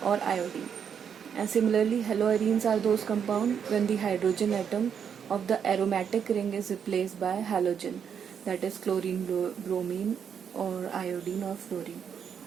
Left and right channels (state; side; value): quieter; left; 7.6 dB